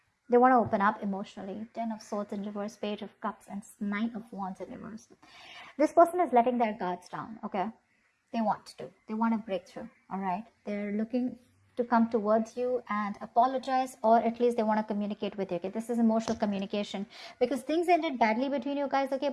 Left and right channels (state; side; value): identical; both; correlation 1.00